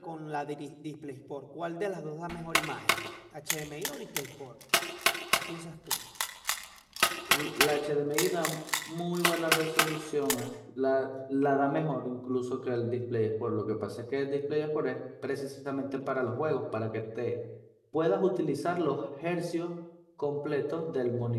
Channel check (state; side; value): identical; both; correlation 1.00